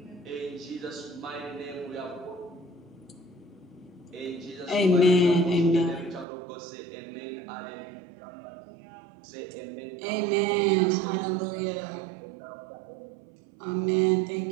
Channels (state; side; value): drops out; left; at 6.2 s